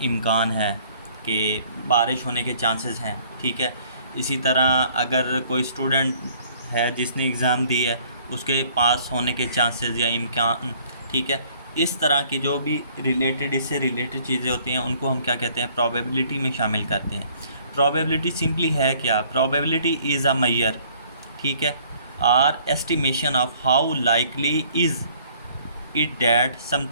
इम्कान है, कि बारिश होने के चांसेस हैं, ठीक है। इसी तरह अगर कोई स्टूडेंट है जिसने एग्ज़ाम दी है, उसके पास होने के चांसेस या इम्कान, ठीक है। इस तरह की जो भी रिलेटेड, इससे रिलेटेड चीज़ें होती हैं उनको हम क्या कहते हैं, प्रोबेबिलिटी में शामिल करते हैं। प्रोबेबिलिटी सिंपली है क्या, प्रोबेबिलिटी इज़ अ मेजर, ठीक है, or estimation of how likely is it that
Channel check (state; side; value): inverted; both; correlation -0.58